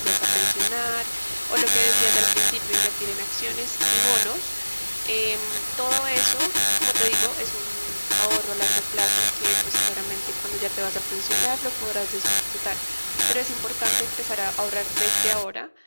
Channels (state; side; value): inverted; both; correlation -1.00